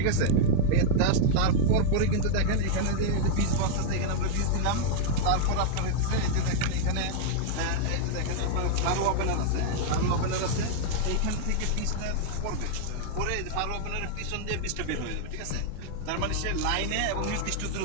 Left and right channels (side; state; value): both; different; correlation -0.01